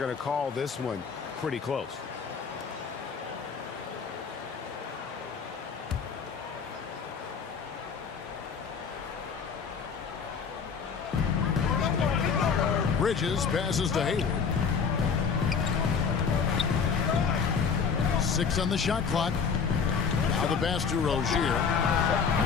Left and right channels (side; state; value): right; quieter; 6.0 dB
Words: to call this one pretty close. Bridges passes to Hayward. 6 on the shot clock. Now the pass to Rozier.